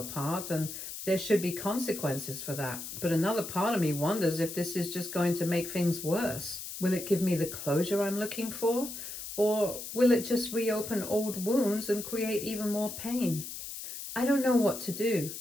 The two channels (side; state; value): left; noise; hiss, 9 dB below the sound